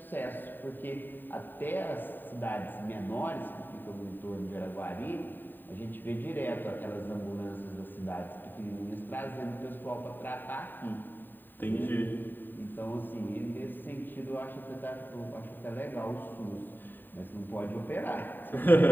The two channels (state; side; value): late; right; 0.092 ms